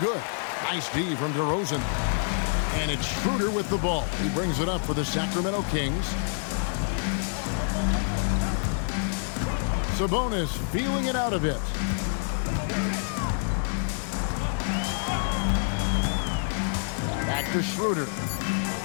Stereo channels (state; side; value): silent; right; digital silence